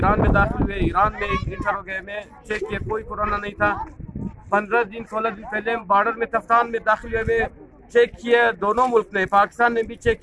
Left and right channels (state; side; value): identical; both; correlation 1.00